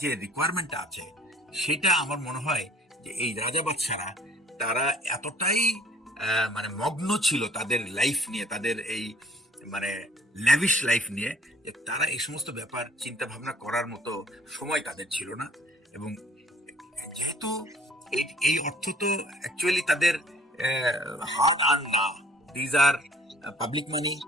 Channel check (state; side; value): normal; both; correlation 0.56